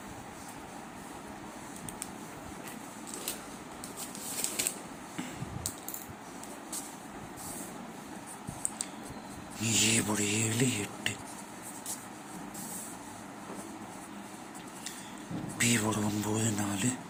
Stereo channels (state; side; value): identical; both; correlation 1.00